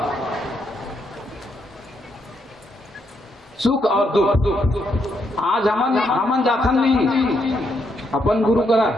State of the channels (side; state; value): both; normal; correlation 0.77